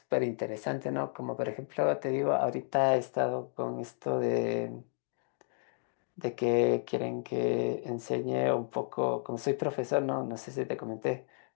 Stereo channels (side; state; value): right; silent; 55 dB below the other